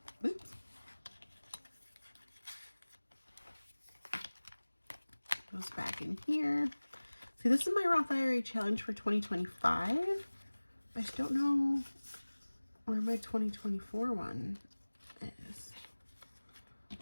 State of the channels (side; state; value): both; inverted; correlation -1.00